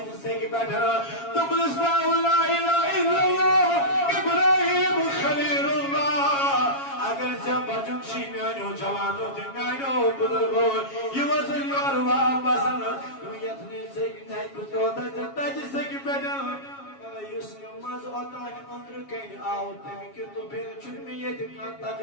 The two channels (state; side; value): late; right; 7.3 ms